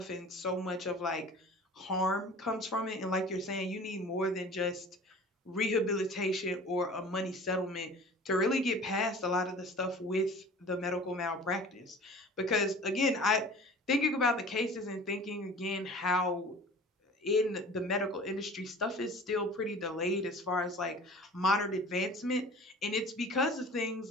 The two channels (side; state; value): both; normal; correlation 0.43